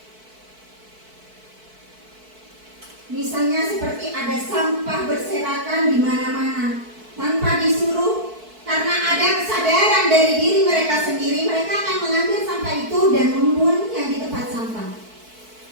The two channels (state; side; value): late; left; 4.6 ms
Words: Misalnya seperti ada sampah berserakan di mana-mana tanpa disuruh, karena ada kesadaran dari diri mereka sendiri, mereka akan mengambil sampah itu dan membuangnya di tempat sampah.